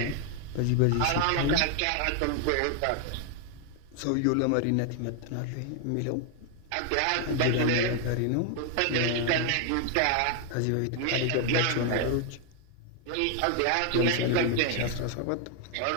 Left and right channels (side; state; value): both; different; correlation 0.00